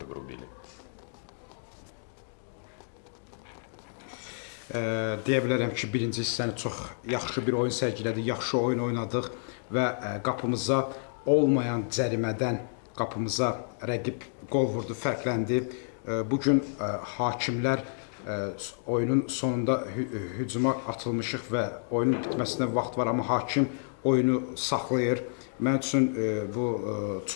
грубили. Deyə bilərəm ki, birinci hissəni çox yaxşı bir oyun sərgilədik, yaxşı oyun oynadıq və qapımıza olmayan cərimədən qapımıza rəqib qol vurdu, fərqləndi. Bugün hakimlər oyunun sonunda hücuma atılmışıq və oyunun bitməsinə vaxt var, amma hakim oyunu saxlayır. Mən üçün bu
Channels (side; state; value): right; silent; digital silence